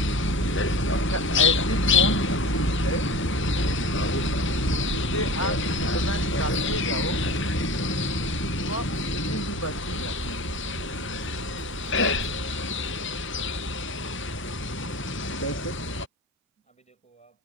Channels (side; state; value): both; normal; correlation 0.35